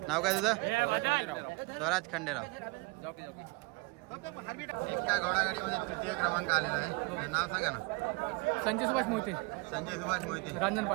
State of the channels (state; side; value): quieter; left; 26.8 dB